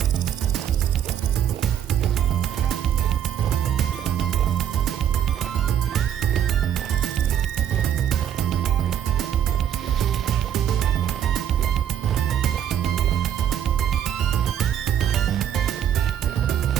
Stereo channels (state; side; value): quieter; left; 9.7 dB